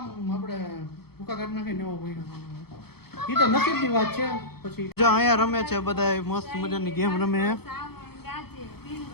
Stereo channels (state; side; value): late; right; 0.96 ms